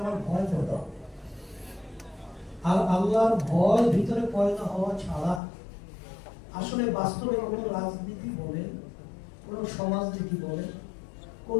আমার ভয় পয়দা হবে। আর আল্লাহর ভয় ভিতরে পয়দা হওয়া ছাড়া আসলে বাস্তবে কোনো রাজনীতি বলেন, কোনো সমাজনীতি বলেন,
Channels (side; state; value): right; drops out; at 5.4 s